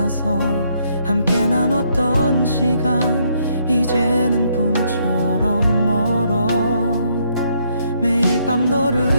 함께 나눴던 시간 이제는 꿈처럼 멀어. 매일 밤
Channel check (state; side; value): inverted; both; correlation -0.72